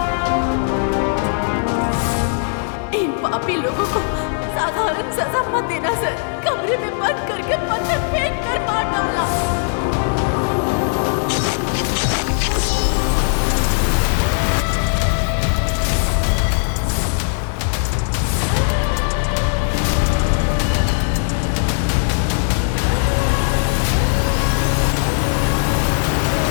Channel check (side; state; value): right; silent; digital silence